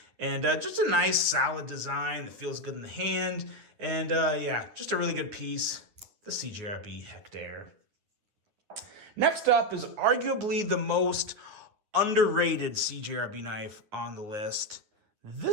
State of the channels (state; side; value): late; left; 9.6 ms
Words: And just a nice solid design that feels good in the hand. And yeah, just a really good piece, the Cjrb Hector. Next up is arguably the most underrated Cjrb knife on the list.